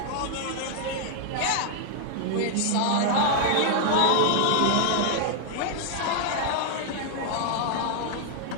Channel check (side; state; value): both; different; correlation 0.00